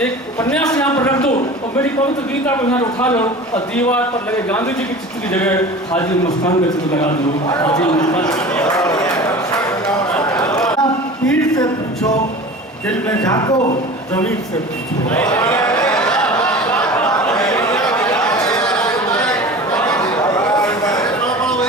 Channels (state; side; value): normal; both; correlation 0.37